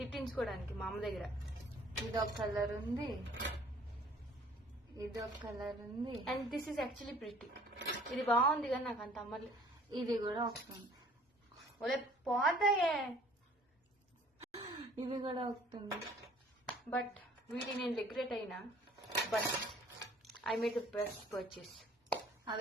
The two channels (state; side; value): normal; both; correlation 0.55